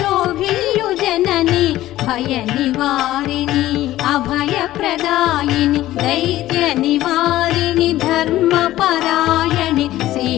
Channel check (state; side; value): quieter; right; 14.9 dB